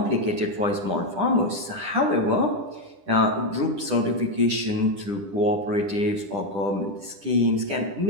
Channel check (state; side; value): late; left; 10 ms